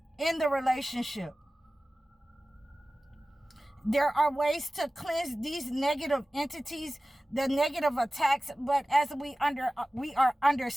in the relationship. There are ways to cleanse these negative entities, the negative attacks, but as we are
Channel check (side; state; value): both; normal; correlation 0.96